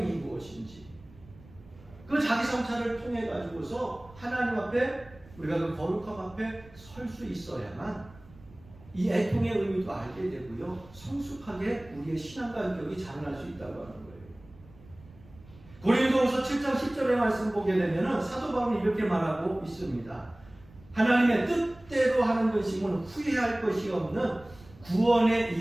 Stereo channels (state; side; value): noise; right; rumble, 23 dB below the sound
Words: 무엇인지 그 자기 성찰을 통해 가지고서 하나님 앞에 우리가 그 거룩함 앞에 설 수 있어야만 이 애통의 의미도 알게 되고요, 성숙하게 우리의 신앙과 인격이 자라날 수 있다고 하는 거예요. 고린도후서 7장 10절의 말씀 보게 되면 사도 바울이 이렇게 말하고 있습니다. 하나님의 뜻대로 하는 것이면 후회할 것이 없는 구원에